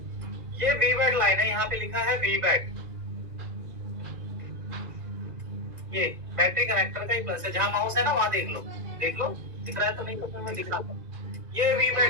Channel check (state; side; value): late; left; 1.9 ms